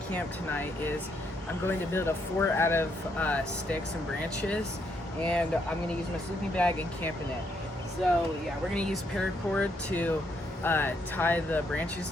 camp tonight is I'm going to build a fort out of sticks and branches, and I'm going to use my sleeping bag and camp in it. So yeah, we're going to use paracord to tie the branches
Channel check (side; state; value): both; normal; correlation 0.74